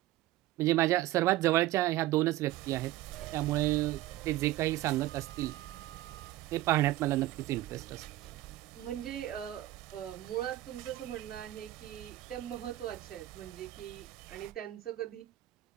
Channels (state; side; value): quieter; left; 15.6 dB